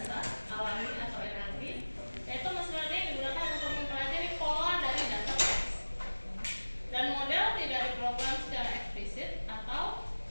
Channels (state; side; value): inverted; both; correlation -1.00